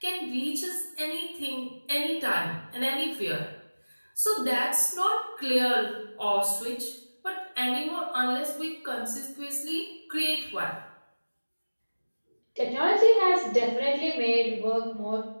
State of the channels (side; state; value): both; inverted; correlation -1.00